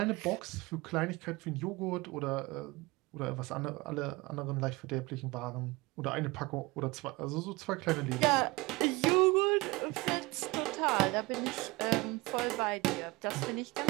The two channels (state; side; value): quieter; left; 23.0 dB